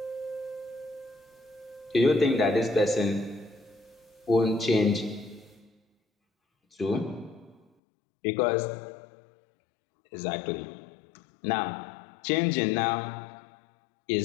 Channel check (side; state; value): right; drops out; at 7.6 s